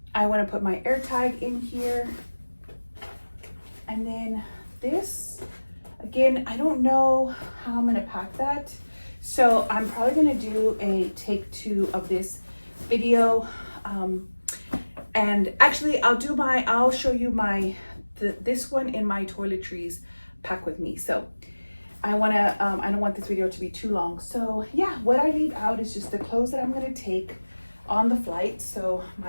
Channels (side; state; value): both; inverted; correlation -1.00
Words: I want to put my air tag in here. And then this, again, I don't know how I'm going to pack that. So I'm probably gonna do a take 2 of this video. And actually I'll show you this one in my toiletries pack with me. So I don't want this video to be too long. So yeah, what I leave out is just the clothes that I'm gonna take on the flight. So